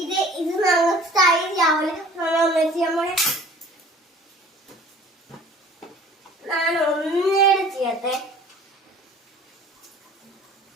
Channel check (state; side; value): normal; both; correlation 0.48